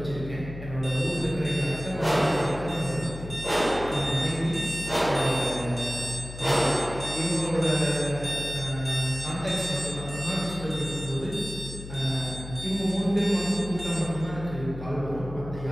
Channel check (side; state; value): left; noise; hum, 11 dB below the sound